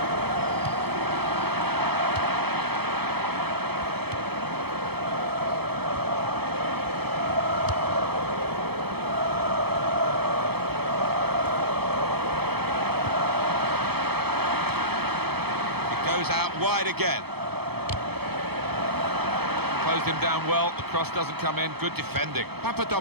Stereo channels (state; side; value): late; left; 0.97 ms